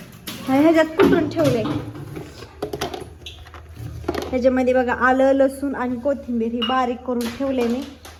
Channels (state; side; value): identical; both; correlation 1.00